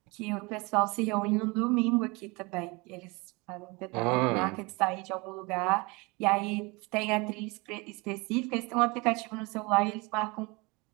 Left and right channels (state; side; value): quieter; left; 26.5 dB